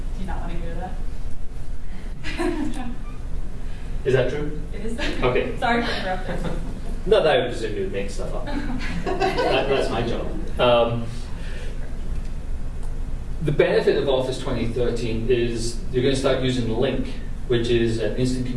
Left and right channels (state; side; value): identical; both; correlation 1.00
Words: Do you not want to go to that? Is that true? It is. Okay. Sorry for interrupting. No, that would presume you would make stuff up. That's my job. The benefit of Office 2013 is you're going to start using Link, which is an instant